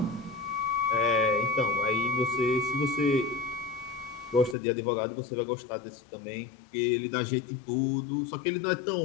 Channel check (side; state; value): right; drops out; at 4.5 s